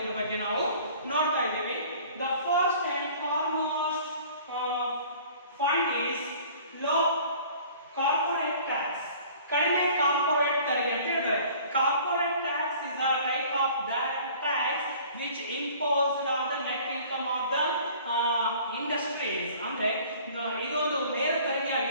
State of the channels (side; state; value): both; inverted; correlation -0.49